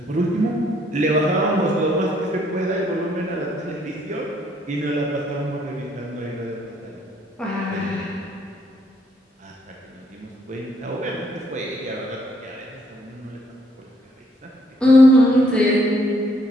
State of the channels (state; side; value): normal; both; correlation 0.68